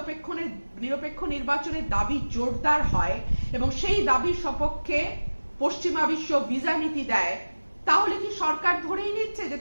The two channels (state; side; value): inverted; both; correlation -1.00